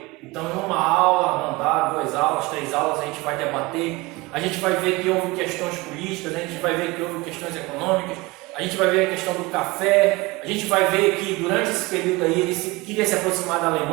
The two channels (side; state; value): left; quieter; 22.9 dB